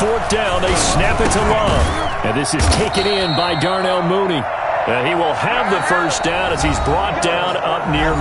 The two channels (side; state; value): both; identical; correlation 1.00